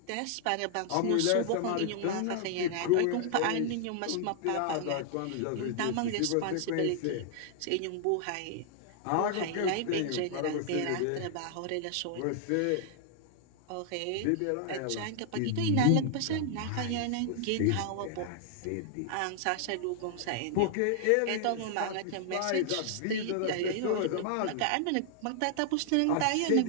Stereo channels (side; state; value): both; different; correlation -0.01